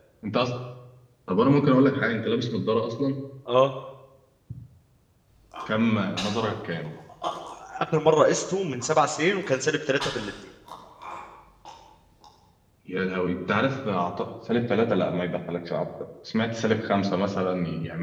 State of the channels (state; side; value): identical; both; correlation 1.00